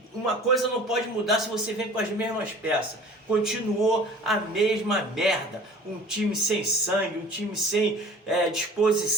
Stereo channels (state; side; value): normal; both; correlation 0.45